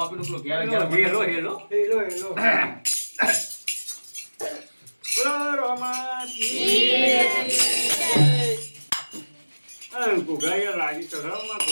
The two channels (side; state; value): both; inverted; correlation -1.00